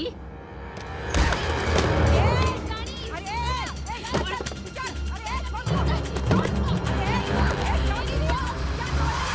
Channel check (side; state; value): both; identical; correlation 1.00